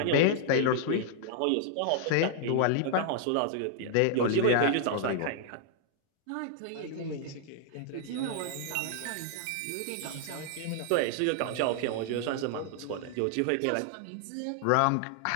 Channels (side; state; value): both; different; correlation 0.00